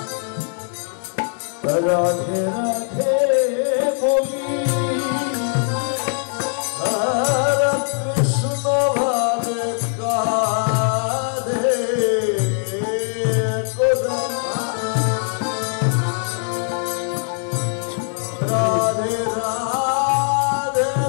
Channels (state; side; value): silent; right; 56 dB below the other